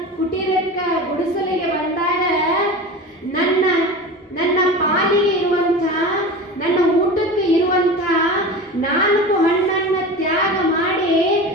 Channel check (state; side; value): normal; both; correlation 0.31